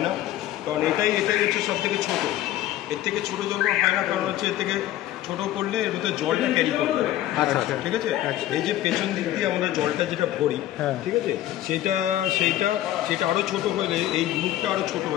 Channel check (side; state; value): right; quieter; 13.8 dB